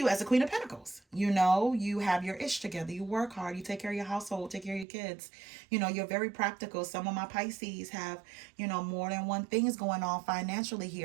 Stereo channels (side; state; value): left; drops out; at 4.9 s